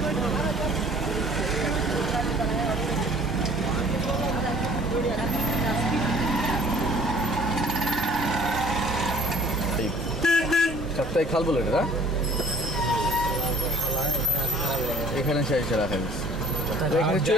চারটায় খাল বলে এটা, এখানে সেই রাখা গেছে। এখানে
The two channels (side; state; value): both; normal; correlation 0.52